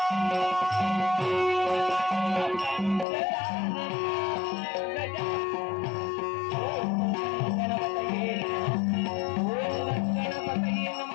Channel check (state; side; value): drops out; right; at 3.1 s